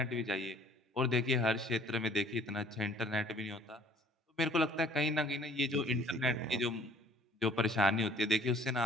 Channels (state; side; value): normal; both; correlation 0.55